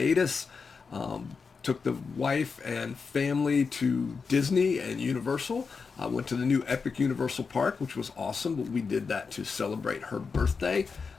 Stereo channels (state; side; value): quieter; right; 5.1 dB